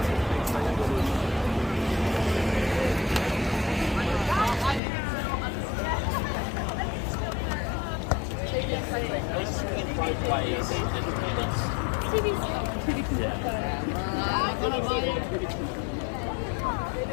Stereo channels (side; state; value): right; drops out; at 4.8 s